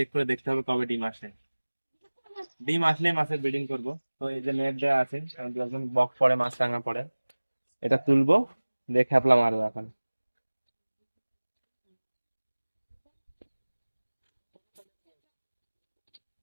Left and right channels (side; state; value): both; inverted; correlation -1.00